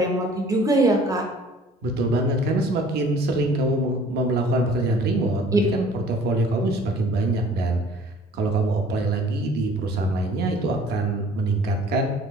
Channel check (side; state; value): both; normal; correlation 0.52